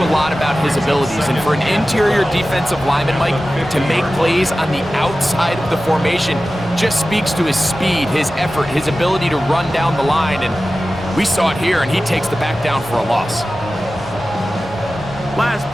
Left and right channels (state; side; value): normal; both; correlation 0.95